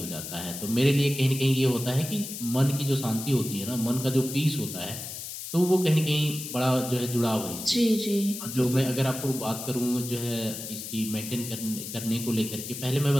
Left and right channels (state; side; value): noise; left; hiss, 8 dB below the sound